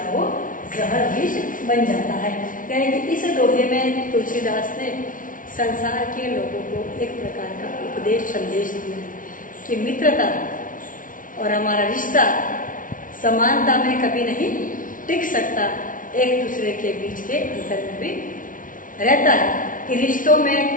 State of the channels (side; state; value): right; late; 0.38 ms